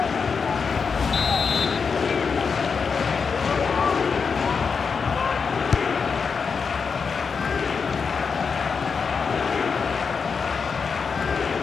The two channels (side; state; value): right; quieter; 5.6 dB